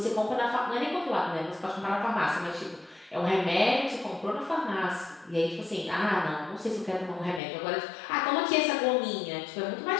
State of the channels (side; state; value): right; drops out; at 7.4 s